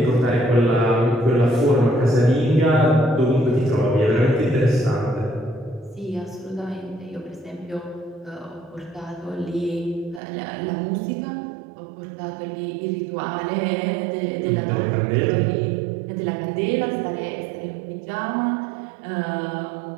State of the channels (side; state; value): left; drops out; at 10.2 s